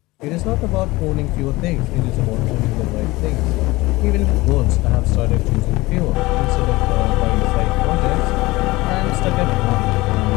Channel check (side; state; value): right; quieter; 20.6 dB